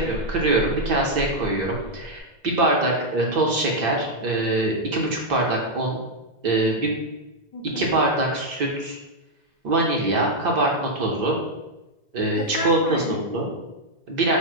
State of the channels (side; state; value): left; late; 2.0 ms